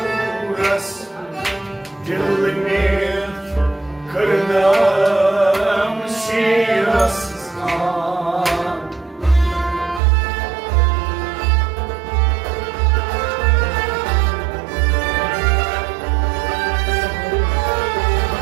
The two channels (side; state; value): left; drops out; at 10.0 s